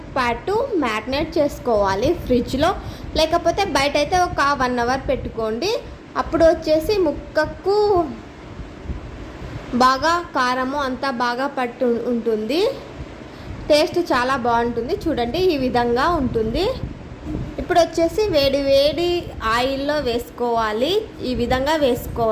పాటు మ్యారినేట్ చేసుకోవాలి ఫ్రిడ్జ్లో, లేకపోతే బయట అయితే ఒక 1 hour పెట్టుకోండి. అప్పుడు వచ్చేసి ముక్కకు బాగా కారము అంతా బాగా పట్టు ఉంటుంది, టేస్ట్ చాలా బాగుంటుంది. చూడండి, ఈ విధంగా ఉంటుంది. ఇప్పుడు వచ్చేసి వేడి వేడి ఆయిల్లో వేసుకోవాలి. ఈ విధంగా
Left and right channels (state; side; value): identical; both; correlation 1.00